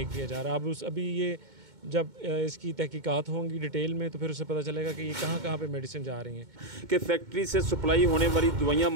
किया जा रहा है। अभी ये जब इसकी तहकीकात होंगी डिटेल में तो फिर उसे पता चलेगा कि ये कहाँ पे मेडिसिन जा रही हैं। कि फैक्ट्री से सप्लाई होने वाली दवाइयाँ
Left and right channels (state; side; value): late; left; 2.2 ms